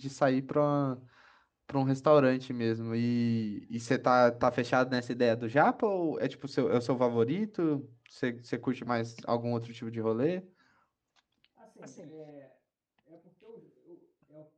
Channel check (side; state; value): both; identical; correlation 1.00